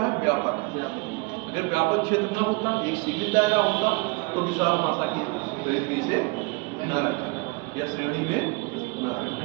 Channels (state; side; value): quieter; left; 27.4 dB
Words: व्यापक। अगर व्यापक क्षेत्र ना होता, एक सीमित दायरा होता, तो विशाल भाषा की श्रेणी से न रखा या श्रेणी में न रखा।